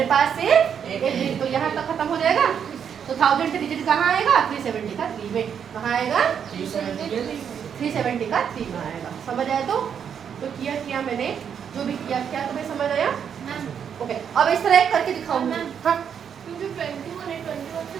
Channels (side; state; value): left; quieter; 7.8 dB